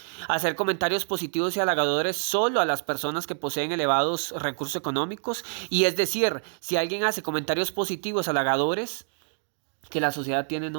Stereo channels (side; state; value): left; silent; digital silence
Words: Hacer comentarios positivos y halagadores solo a las personas que poseen elevados recursos económicos. Y es decir, si alguien hace comentarios positivos, halagadores, que la sociedad tiene